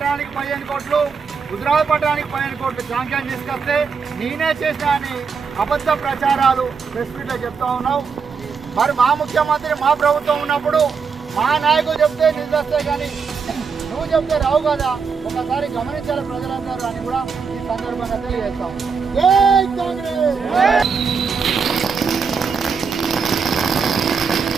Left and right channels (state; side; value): quieter; left; 5.7 dB